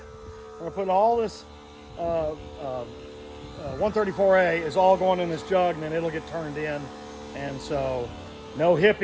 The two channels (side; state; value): both; identical; correlation 1.00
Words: gonna put all this 134A is all going in this jug, and then it'll get turned in. And so, no